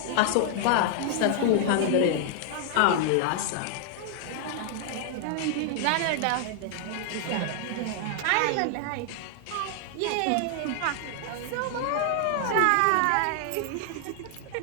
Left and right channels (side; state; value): both; different; correlation 0.00